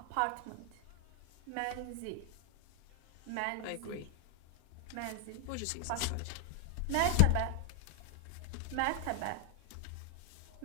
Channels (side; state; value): both; different; correlation 0.00